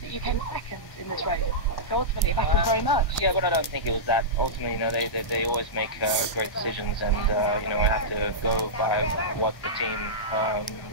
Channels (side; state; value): right; late; 1.1 ms